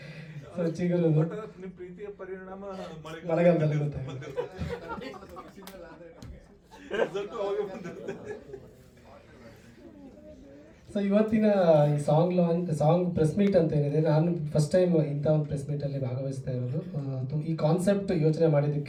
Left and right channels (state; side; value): identical; both; correlation 1.00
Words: ಸೊ ಚಿಗುರು ಪ್ರೀತಿಯ ಪರಿಣಾಮ ಮಳೆಗಾಲದಲ್ಲಿ ಗೊತ್ತಾಗುತ್ತೆ. ಸೊ ಇವತ್ತಿನ ಈ ಸಾಂಗ್ ಪ್ರೆಸ್ ಮೀಟ್ ಅಂತ ಏನಿದೆ, ನಾನು ಫಸ್ಟ್ ಟೈಮ್ ಇಂಥ ಒಂದು ಪ್ರೆಸ್ ಮೀಟಲ್ಲಿ ಭಾಗವಹಿಸ್ತಾ ಇರೋದು. ಈ ಕಾನ್ಸೆಪ್ಟ್ ಯೋಚನೆ